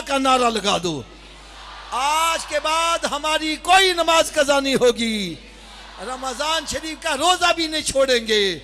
का नारा लगा दो। आज के बाद हमारी कोई नमाज कज़ा नहीं होगी, रमजान शरीफ का रोजा भी नहीं छोड़ेंगे,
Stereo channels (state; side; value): identical; both; correlation 1.00